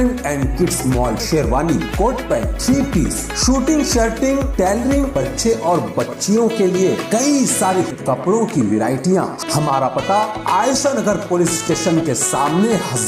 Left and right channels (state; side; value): identical; both; correlation 1.00